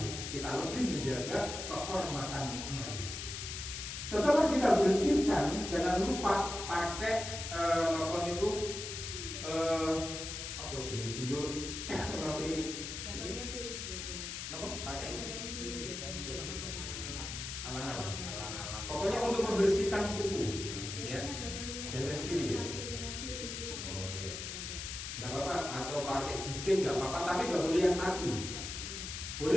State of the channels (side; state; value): left; noise; hiss, 6 dB below the sound